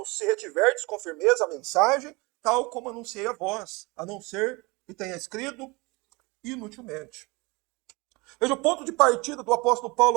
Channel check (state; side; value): quieter; left; 25.5 dB